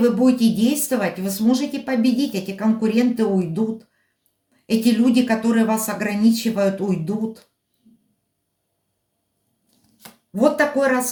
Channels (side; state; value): both; identical; correlation 1.00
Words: будете действовать, вы сможете победить. Эти конкуренты уйдут. Эти люди, которые вас ограничивают, уйдут. Вот такой